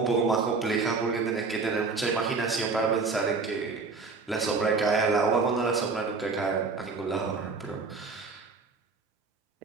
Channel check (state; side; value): quieter; left; 4.4 dB